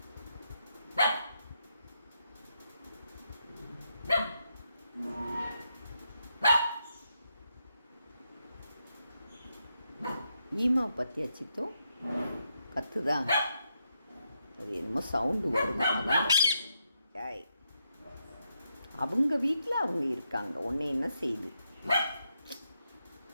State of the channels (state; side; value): inverted; both; correlation -0.81